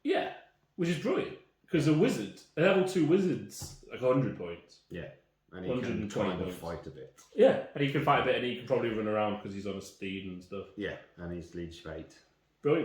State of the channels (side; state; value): both; identical; correlation 1.00